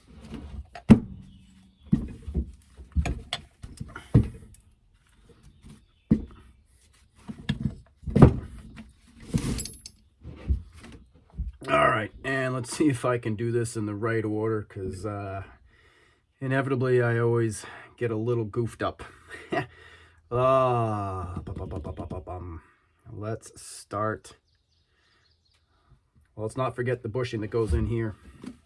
All right, and let's see if I can do this in the right order, because inevitably I always get a little goofed up. Let's start. Well, let's not forget the bushing that goes in here.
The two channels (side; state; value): both; identical; correlation 1.00